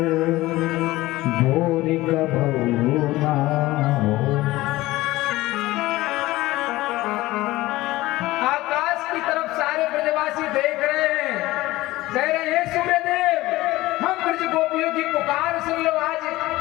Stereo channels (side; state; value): right; quieter; 18.2 dB